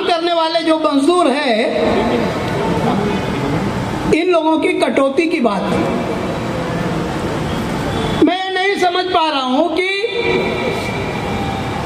करने वाले जो मजदूर है, इन लोगों की कटौती की बात है। मैं नहीं समझ पा रहा हूं कि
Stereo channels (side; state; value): both; identical; correlation 1.00